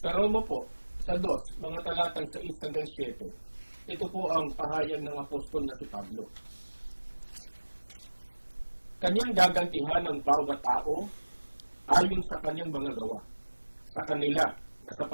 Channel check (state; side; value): inverted; both; correlation -1.00